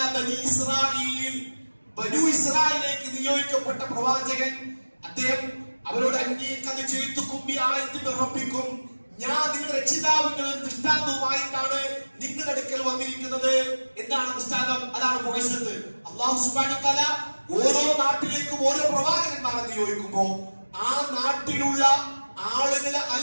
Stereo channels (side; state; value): both; inverted; correlation -1.00